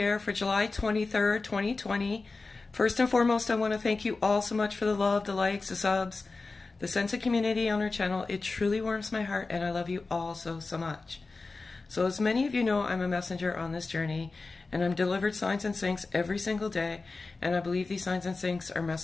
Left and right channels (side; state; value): right; quieter; 3.8 dB